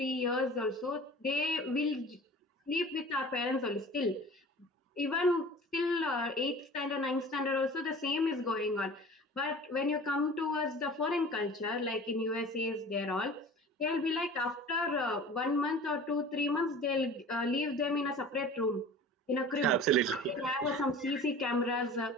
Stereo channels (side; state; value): both; normal; correlation 0.41